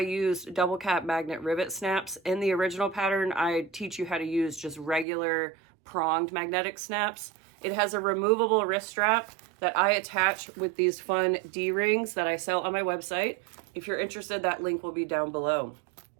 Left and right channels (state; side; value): drops out; left; at 5.1 s